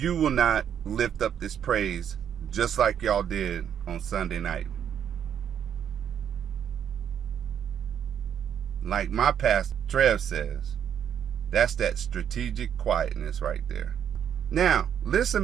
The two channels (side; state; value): left; quieter; 8.9 dB